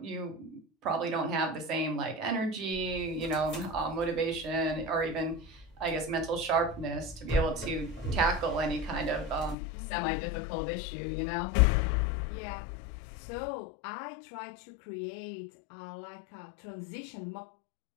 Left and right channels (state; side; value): drops out; right; at 9.6 s